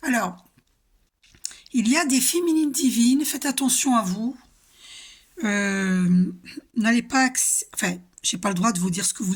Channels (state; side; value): identical; both; correlation 1.00